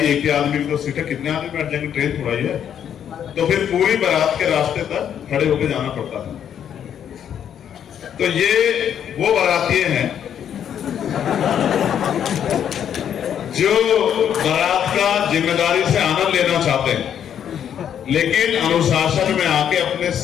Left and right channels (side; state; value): right; quieter; 9.1 dB